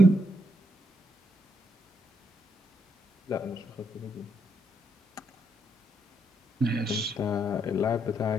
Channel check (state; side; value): normal; both; correlation 0.76